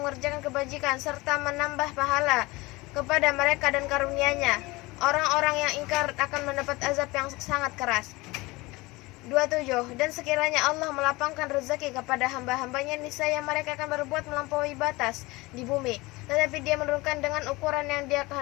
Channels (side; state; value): right; quieter; 22.2 dB